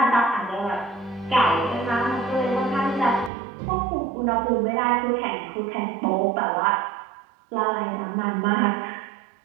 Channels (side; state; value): left; drops out; at 3.3 s